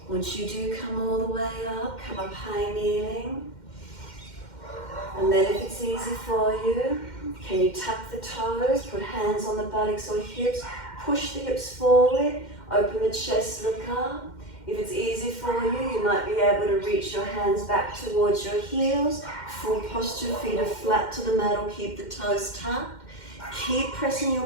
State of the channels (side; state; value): right; late; 2.1 ms